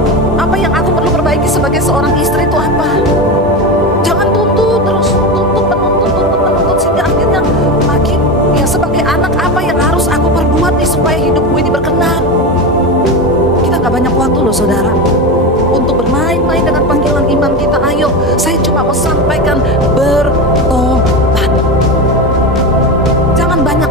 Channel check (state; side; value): normal; both; correlation 0.19